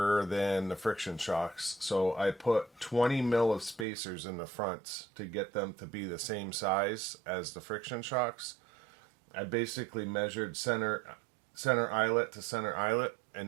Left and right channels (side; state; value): left; drops out; at 3.9 s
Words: than the friction shocks. So I put 20 mil of spacers in the fronts to get them to be the same size as the friction shocks. I basically measured center eyelet to center eyelet